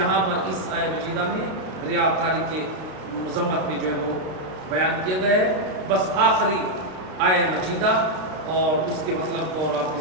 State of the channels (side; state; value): left; late; 32 ms